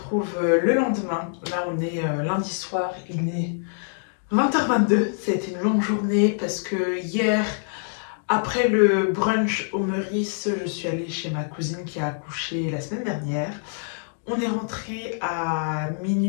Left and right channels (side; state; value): right; silent; digital silence